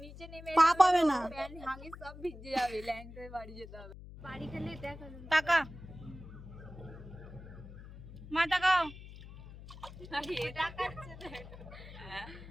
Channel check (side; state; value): left; noise; hum, 15 dB below the sound